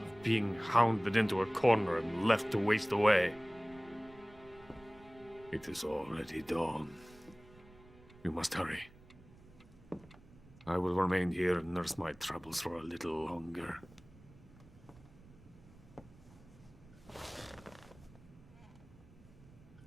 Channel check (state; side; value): noise; right; rumble, 23 dB below the sound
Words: being hounded into a corner and left to waste away. It is already dawn. You must hurry. I will remain here and nurse my troubles for a little longer.